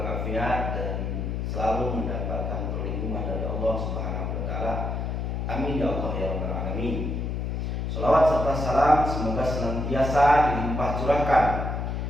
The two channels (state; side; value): noise; left; hum, 2 dB below the sound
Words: dan selalu mendapatkan perlindungan dari Allah Subhanahu wa taala. Amin ya Allah ya rabbal alamin. Salawat serta salam semoga senantiasa dilimpah curahkan